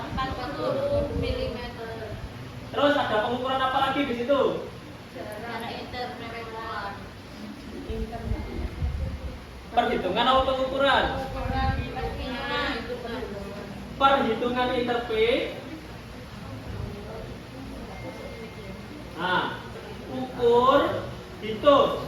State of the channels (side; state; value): both; identical; correlation 1.00